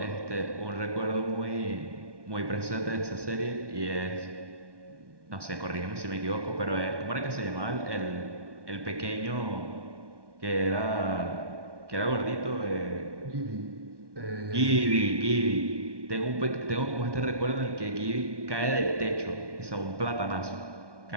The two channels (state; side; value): late; left; 1.2 ms